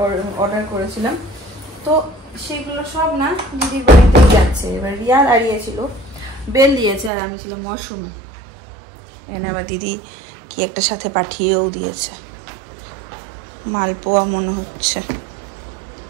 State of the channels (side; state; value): left; drops out; at 7.1 s